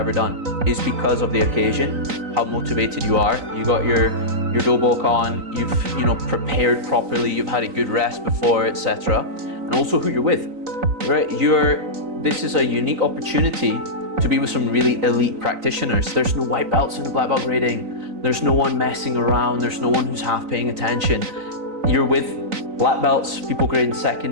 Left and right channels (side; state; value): left; late; 3.9 ms